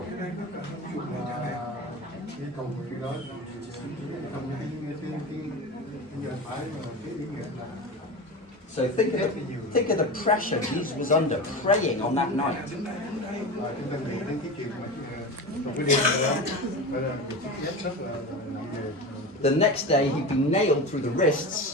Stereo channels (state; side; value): normal; both; correlation 0.27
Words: Cái cầu nguyện đó trong cái phải cái ý nghĩa là. So think of the pressure Jesus was under praying on that night. Chúng ta nghĩ đến cái chuyện mà trong cái đêm đó phải là một sức ép rất là nặng nề. The next day he'd be nailed through the